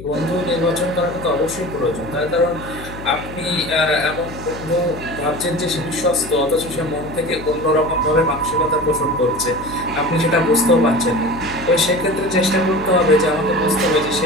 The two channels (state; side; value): noise; left; hum, 13 dB below the sound